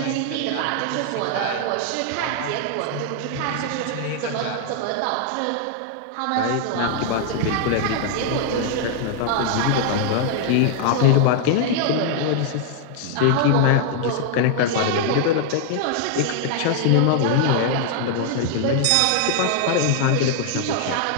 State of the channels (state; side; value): different; both; correlation 0.00